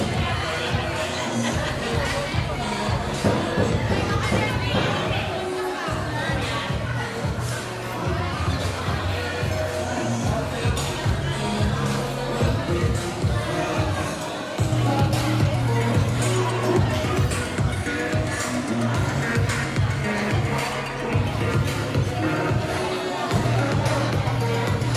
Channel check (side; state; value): both; identical; correlation 1.00